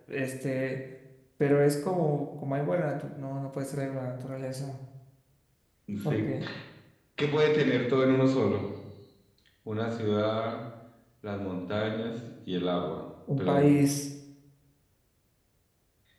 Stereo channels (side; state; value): both; identical; correlation 1.00